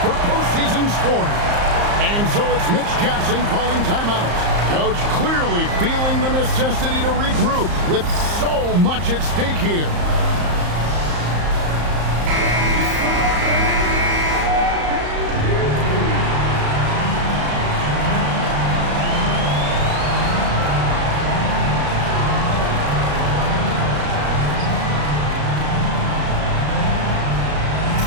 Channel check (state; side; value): late; left; 34 ms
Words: for postseason scoring. And so it's Mitch Johnson calling timeout. Coach clearly feeling the necessity to regroup with so much at stake here.